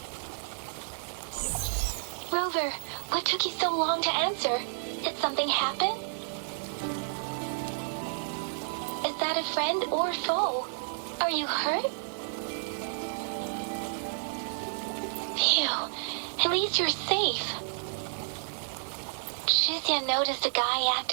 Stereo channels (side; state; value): left; silent; digital silence